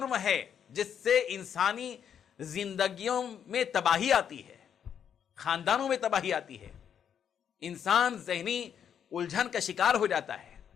ہے جس سے انسانی زندگیوں میں تباہی آتی ہے، خاندانوں میں تباہی آتی ہے، انسان ذہنی الجھن کا شکار ہو جاتا ہے،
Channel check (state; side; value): quieter; right; 8.4 dB